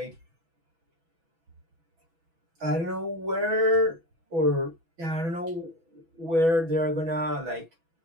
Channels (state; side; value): late; left; 6.1 ms